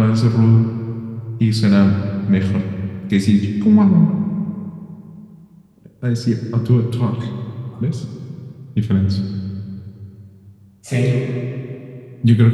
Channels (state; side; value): identical; both; correlation 1.00